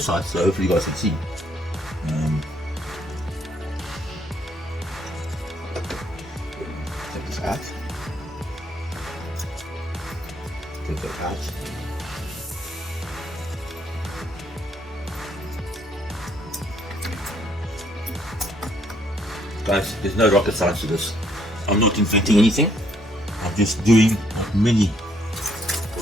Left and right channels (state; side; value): normal; both; correlation 0.68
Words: side, so hopefully you guys can see. Take this out. Take that out. Guys, there's no rocket science to this. I'm not inventing anything. I'm just doing what many